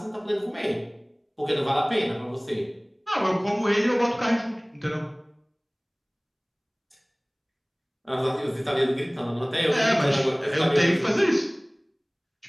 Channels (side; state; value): both; identical; correlation 1.00